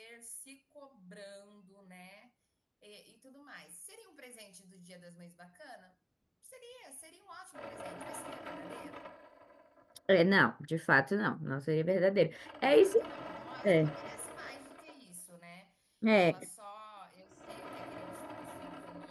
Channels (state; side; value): identical; both; correlation 1.00